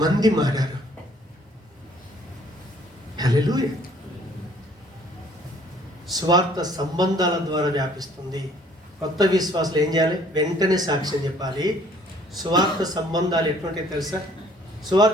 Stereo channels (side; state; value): both; normal; correlation 0.59